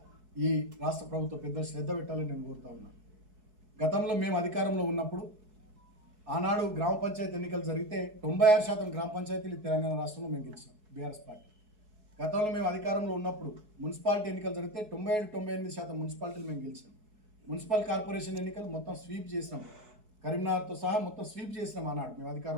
ఈ రాష్ట్ర ప్రభుత్వ పెద్దలు శ్రద్ధ పెట్టాలని నేను కోరుతా ఉన్నాను. గతంలో మేము అధికారంలో ఉన్నప్పుడు ఆనాడు గ్రామ పంచాయతీ ఎన్నికలు జరిగితే 96% గ్రామ పంచాయతీలు తెలంగాణ రాష్ట్రంలో మేము గెలిచాం బీఆర్ఎస్ పార్టీ. గతంలో మేము అధికారంలో ఉన్నప్పుడు మున్సిపాలిటీ ఎన్నికలు జరిగితే 97-98% మున్సిపాలిటీలు మేము గెలిచాం. మున్సిపల్ కార్పొరేషన్ ఎన్నికలు మొత్తం స్వీప్ చేసినాం, కరీంనగర్తో సహా మొత్తం స్వీప్ చేసినాం ఆనాడు మేము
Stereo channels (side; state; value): left; late; 4.7 ms